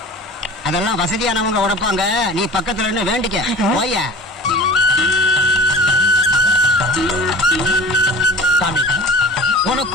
அதெல்லாம் வசதியானவங்க உடைப்பாங்க. நீ பக்கத்துல இருந்து வேண்டிக்க போய. சாமி உனக்கு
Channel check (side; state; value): both; normal; correlation 0.40